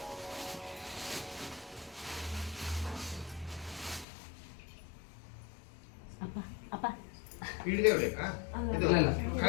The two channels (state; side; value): drops out; right; at 4.0 s